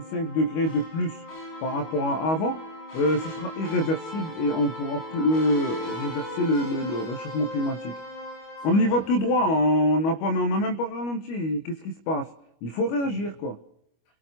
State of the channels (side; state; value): right; late; 25 ms